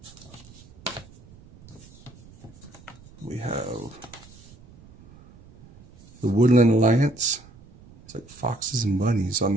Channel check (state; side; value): noise; right; rumble, 23 dB below the sound